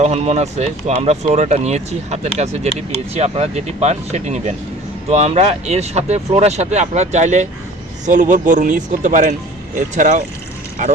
হরমোন আছে। তো আমরা ফ্লোরাটা নিয়েছি, হাতের কাছে যেটি পেয়েছি, আপনারা যেটি পান সেটি নেবেন। তো আমরা এর সাথে ফ্লোরার সাথে আপনারা চাইলে সলুবর বোরন ইউজ করতে পারেন, এছাড়াও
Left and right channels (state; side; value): normal; both; correlation 0.45